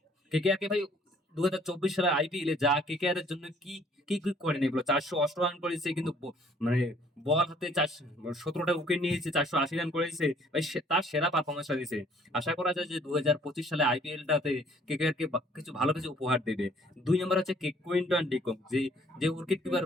কেকেআর কে ভাই 2024 সালের আইপিএল এ যা কেকেআর এর জন্য কি কি কি করেন, এগুলো 408 রান করেছে, কিন্তু মানে বল হাতে 17টা উইকেট নিয়েছে, 480 রান করেছে ভাই, তার সেরা পারফরমেন্সটা দিয়েছে। আশা করা যায় যে 2025 সালে আইপিএলটাতে কেকেআর কে কিছু ভালো কিছু উপহার দেবে। দুই নম্বর হচ্ছে কুইন্টন ডিকক, যে যে উইকেট কিপার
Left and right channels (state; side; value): normal; both; correlation 0.60